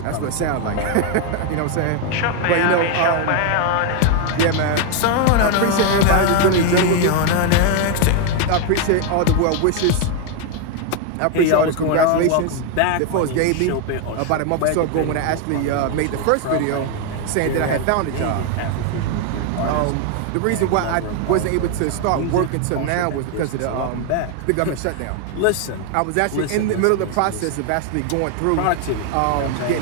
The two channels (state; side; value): different; both; correlation 0.01